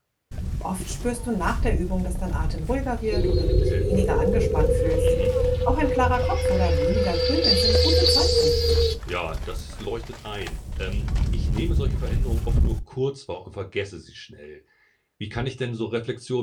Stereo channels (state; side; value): identical; both; correlation 1.00